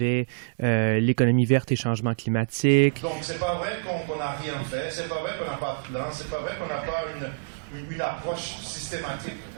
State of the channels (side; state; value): left; silent; digital silence